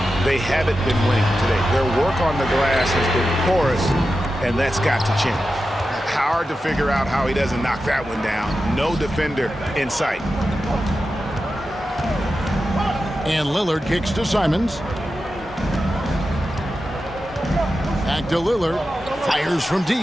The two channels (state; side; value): normal; both; correlation 0.91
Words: they haven't been winning today. Their work on the glass has been porous, and that's got to change. Hard to figure out how he doesn't knock that one down. No defender in sight. And Lillard kicks to Simons. Back to Lillard. Fires from